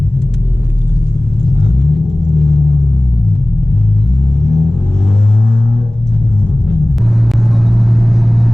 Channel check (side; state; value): both; normal; correlation 0.98